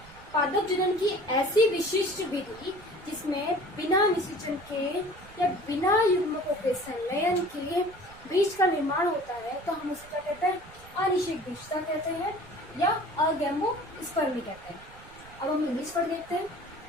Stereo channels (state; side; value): noise; right; rumble, 21 dB below the sound